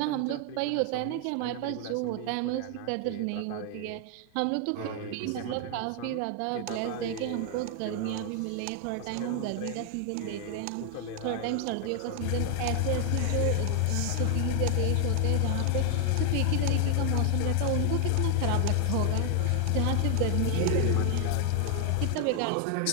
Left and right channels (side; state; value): both; different; correlation 0.00